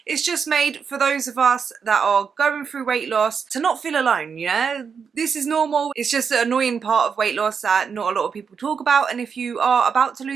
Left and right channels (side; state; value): left; quieter; 6.3 dB